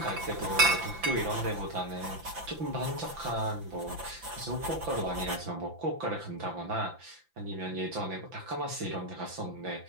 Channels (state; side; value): late; left; 5.9 ms